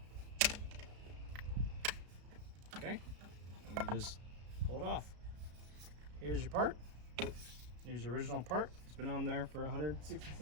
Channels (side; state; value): left; late; 33 ms